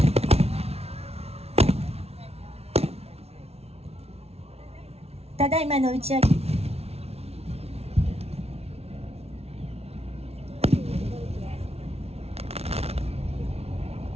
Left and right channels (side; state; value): left; late; 0.30 ms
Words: ただいまの打ち上げ。